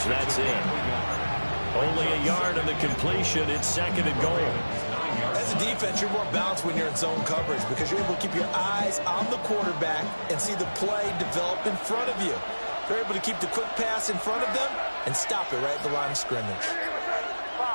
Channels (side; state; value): both; inverted; correlation -1.00